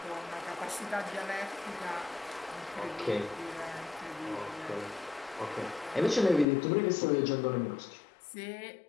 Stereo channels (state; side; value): drops out; right; at 6.5 s